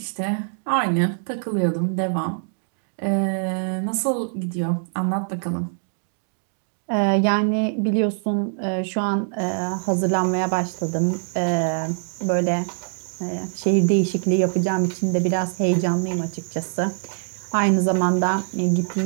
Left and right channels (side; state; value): left; silent; digital silence